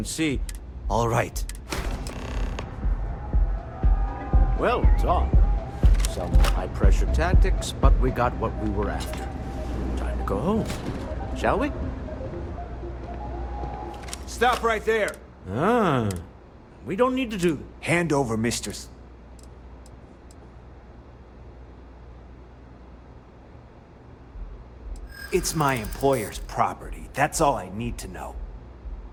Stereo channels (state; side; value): identical; both; correlation 1.00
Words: see... All right. Well done. Some high-pressure tactics, but we got what we were after. Time to go home, shall we? Stop right there. Ah. We don't need to do that. Hand over Mr. It's my employer's property. That's all I need to know.